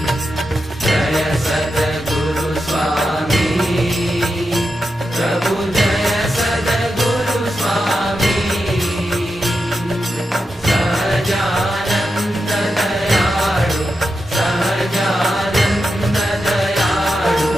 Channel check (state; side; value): normal; both; correlation 0.88